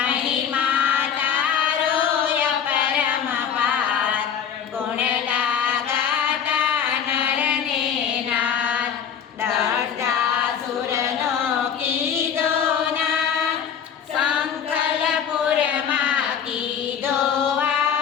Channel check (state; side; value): quieter; right; 7.9 dB